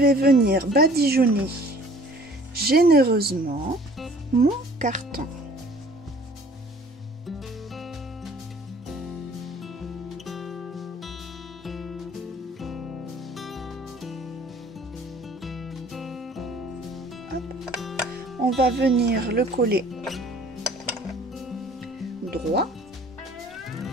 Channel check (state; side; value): normal; both; correlation 0.52